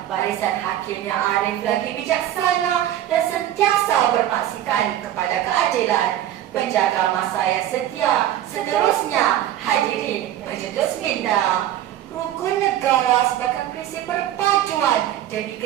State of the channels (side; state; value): left; quieter; 12.3 dB